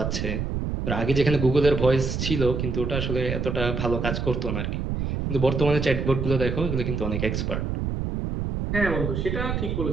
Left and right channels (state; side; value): noise; right; rumble, 2 dB below the sound